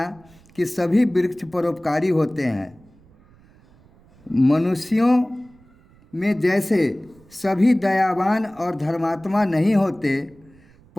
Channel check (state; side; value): noise; right; rumble, 28 dB below the sound